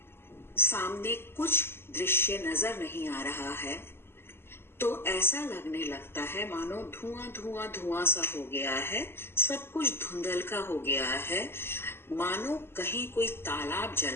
सामने कुछ दृश्य नजर नहीं आ रहा है तो ऐसा लगने लगता है मानो धुआं धुआं धुआं सा हो गया है, सब कुछ धुंधलका हो गया है, मानो कहीं कोई तालाब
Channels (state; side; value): late; right; 0.11 ms